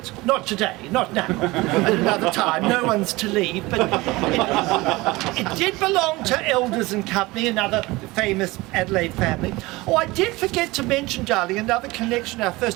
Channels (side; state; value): left; quieter; 21.3 dB